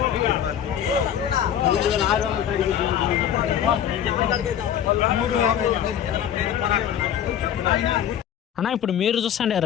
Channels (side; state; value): right; quieter; 9.8 dB